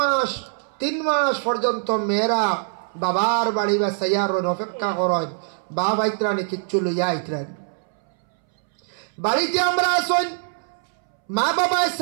3 মাস পর্যন্ত মেয়েরা বাবার বাড়ি বা সাইয়ার অপেক্ষা করেন, বাবা আইত্রানি কিচ্ছু লইয়া আইত্রান। বাড়িতে আমরা আসুন, মা বাবা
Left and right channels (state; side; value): silent; left; 63 dB below the other